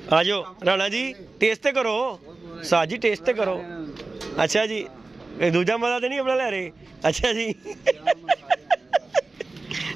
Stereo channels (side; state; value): left; quieter; 3.5 dB